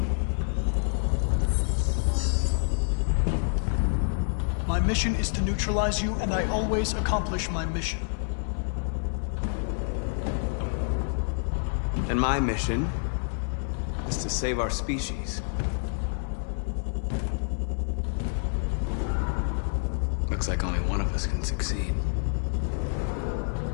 My mission is to neutralize you, and I always accomplish my mission. And my mission is to save our species. Looks like only one of us can succeed.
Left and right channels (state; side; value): silent; right; digital silence